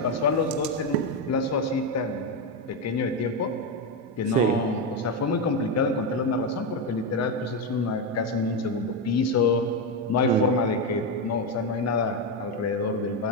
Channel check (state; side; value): normal; both; correlation 0.08